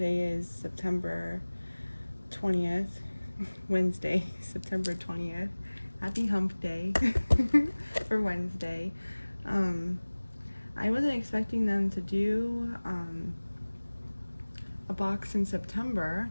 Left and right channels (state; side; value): inverted; both; correlation -1.00